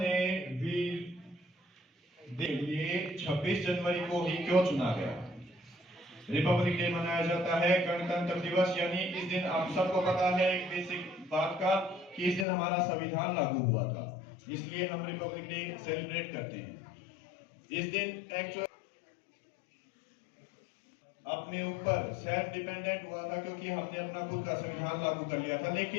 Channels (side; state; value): right; drops out; at 12.5 s